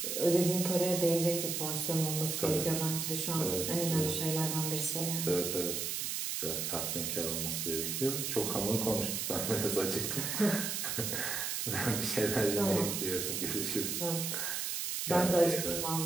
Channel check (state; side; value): noise; right; hiss, 1 dB below the sound